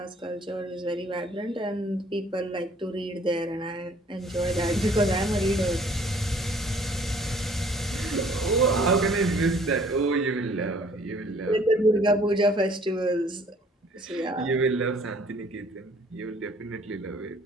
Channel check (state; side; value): normal; both; correlation 0.57